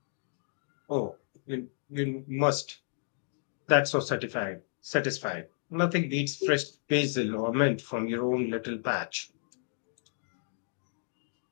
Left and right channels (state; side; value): silent; right; digital silence